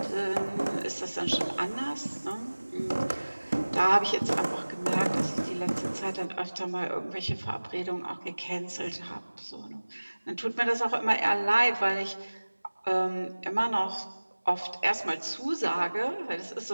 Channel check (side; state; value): both; inverted; correlation -1.00